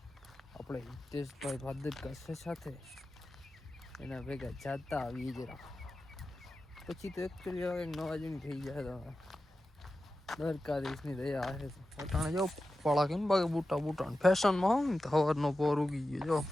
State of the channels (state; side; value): normal; both; correlation 0.93